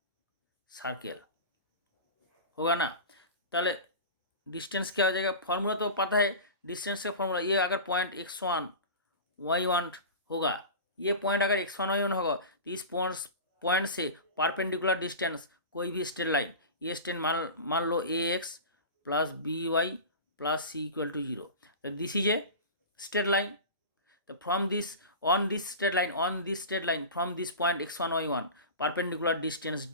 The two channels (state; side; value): inverted; both; correlation -0.31